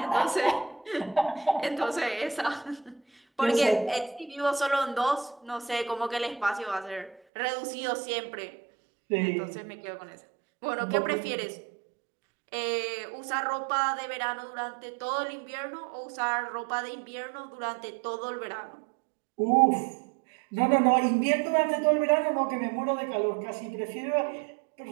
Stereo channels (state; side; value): drops out; left; at 7.2 s